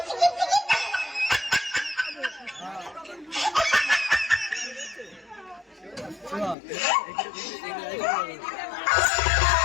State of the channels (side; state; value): right; drops out; at 6.6 s